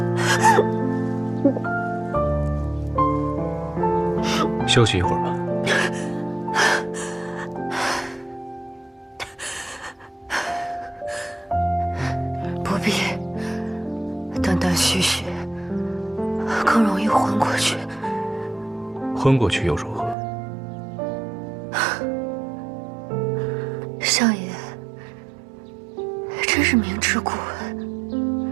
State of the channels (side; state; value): left; drops out; at 20.2 s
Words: 休息一会儿吧。不必，断断续续，更容易昏过去。昏过去又如何？相爷，真是明知故问。